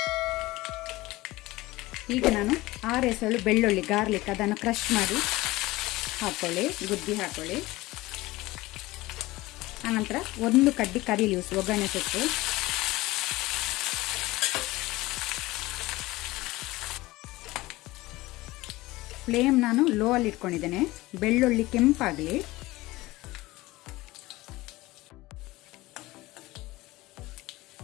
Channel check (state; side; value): quieter; right; 19.4 dB